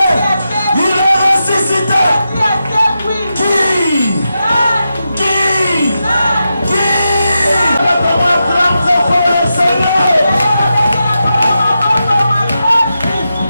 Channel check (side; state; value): both; inverted; correlation -0.88